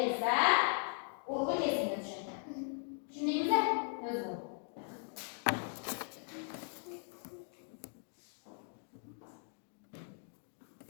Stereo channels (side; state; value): right; silent; 52 dB below the other